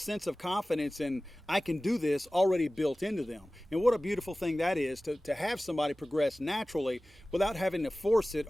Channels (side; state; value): both; normal; correlation 0.97